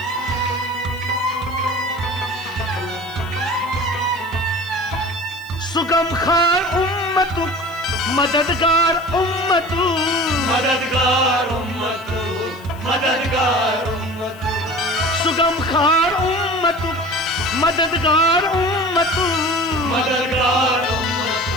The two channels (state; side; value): noise; left; hiss, 24 dB below the sound